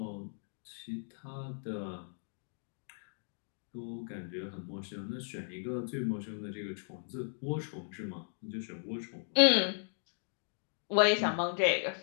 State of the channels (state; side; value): silent; right; 54 dB below the other